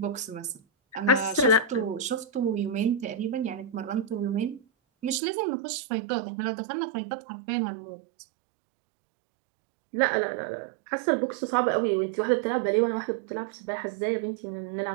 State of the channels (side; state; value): left; drops out; at 5.2 s